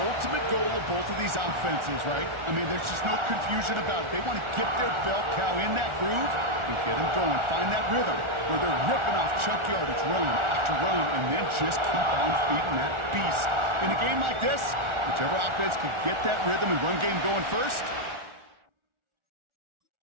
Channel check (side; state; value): left; late; 1.4 ms